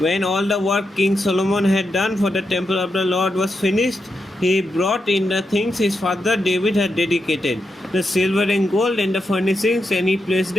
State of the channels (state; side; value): normal; both; correlation 0.85